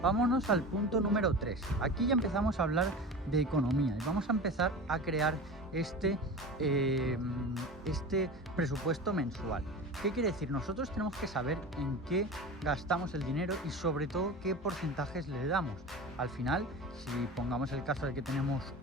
Vámonos al punto número 3, aquí ya empezamos a hablar de economía y vamos a empezar a crear este presupuesto mensual. ¿Qué quiere decir? Nosotros tenemos que saber en qué gastamos el dinero y sobre todo qué porcentajes le damos. Al final, si pongamos el caso de que tenemos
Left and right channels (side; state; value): both; normal; correlation 0.32